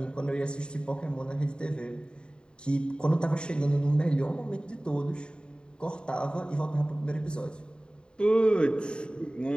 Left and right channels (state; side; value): late; right; 0.050 ms